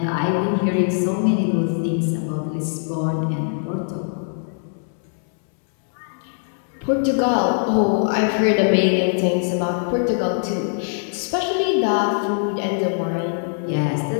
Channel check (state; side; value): silent; right; 64 dB below the other